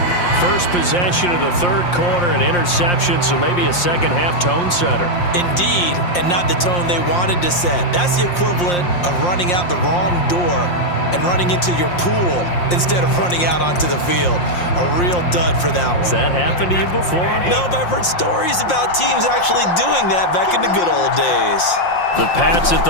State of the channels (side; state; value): right; late; 5.7 ms